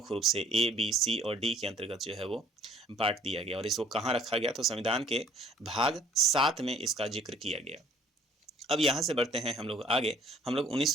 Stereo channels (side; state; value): both; normal; correlation 0.57